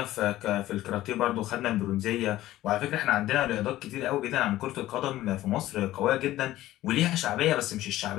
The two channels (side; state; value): right; quieter; 15.2 dB